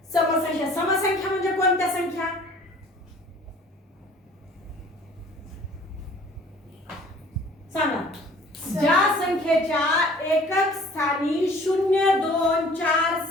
समसंख्या. समसंख्या म्हणजे कोणत्या संख्या, सांगा. ज्या संख्येच्या एकक स्थानी 0, 2, 4,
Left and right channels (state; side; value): normal; both; correlation 0.51